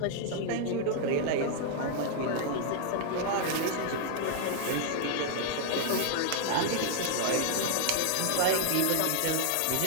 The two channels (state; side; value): different; both; correlation 0.00